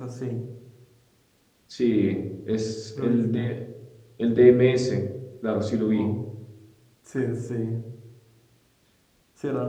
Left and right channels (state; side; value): identical; both; correlation 1.00